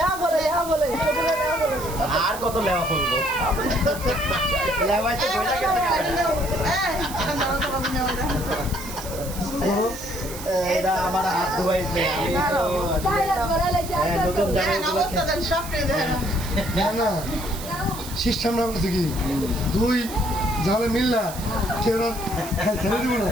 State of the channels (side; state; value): right; noise; hiss, 12 dB below the sound